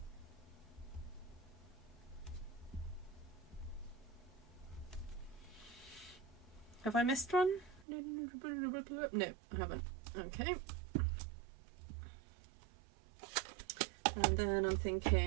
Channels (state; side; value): drops out; left; at 7.9 s